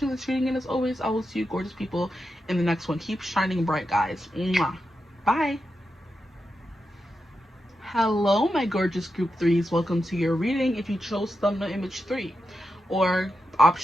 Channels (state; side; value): normal; both; correlation 0.88